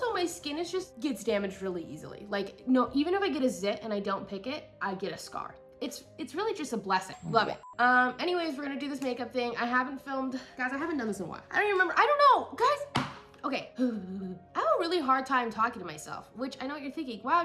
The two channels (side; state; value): both; identical; correlation 1.00